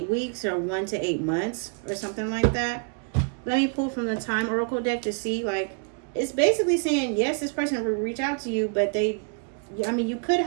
weeks or 1 to 8 months or something like that. Let me pull from the Time Oracle deck to see, like, it's basically saying, yes, this person will reach out to you, but I mean, you could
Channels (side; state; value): left; quieter; 38.2 dB